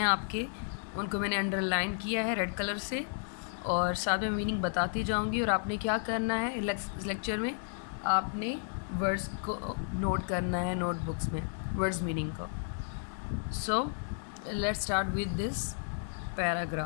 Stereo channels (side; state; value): right; silent; digital silence